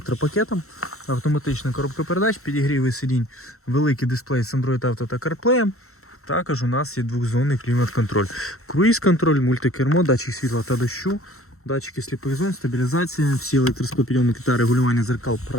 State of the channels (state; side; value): late; right; 0.63 ms